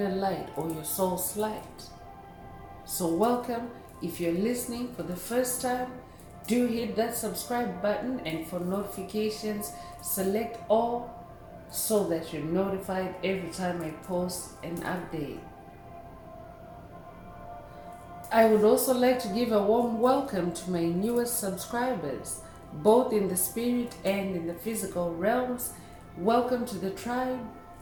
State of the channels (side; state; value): both; identical; correlation 1.00